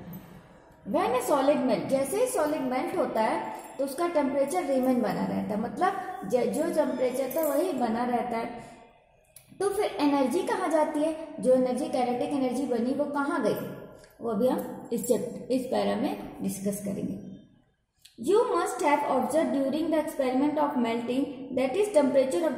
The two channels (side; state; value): both; identical; correlation 1.00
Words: When a solid melt, जैसे ही सॉलिड मेल्ट होता है तो उसका टेम्परेचर रिमेन बना रहता है, मतलब जो टेम्परेचर था वही बना रहता है। तो फिर एनर्जी कहाँ जाती है, जो एनर्जी काइनेटिक एनर्जी बनी वो कहाँ गई, वो भी हम इस पैरा में डिस्कस करेंगे। You must have observed during the experiment of melting that is temperature of